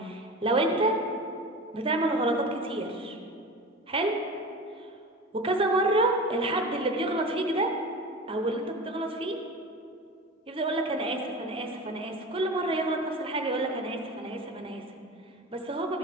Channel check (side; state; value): both; normal; correlation 0.32